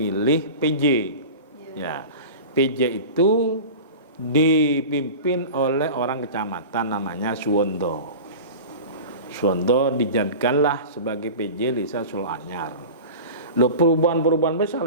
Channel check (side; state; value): both; inverted; correlation -0.33